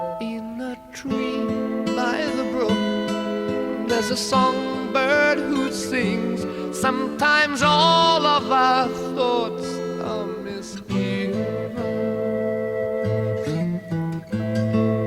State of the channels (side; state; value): both; identical; correlation 1.00